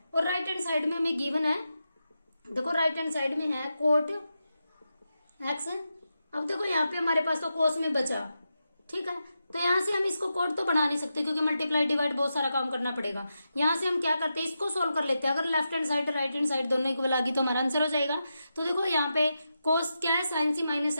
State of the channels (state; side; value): inverted; both; correlation -0.88